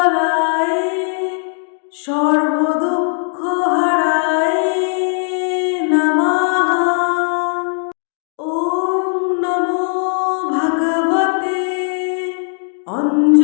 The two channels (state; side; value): silent; right; 57 dB below the other